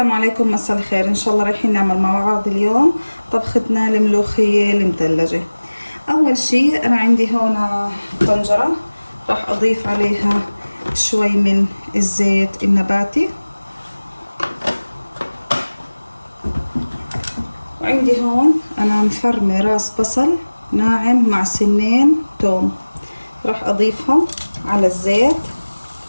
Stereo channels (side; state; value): both; inverted; correlation -1.00